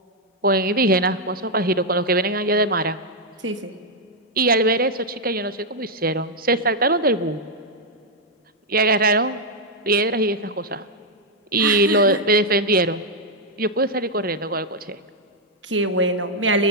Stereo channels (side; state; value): both; normal; correlation -0.02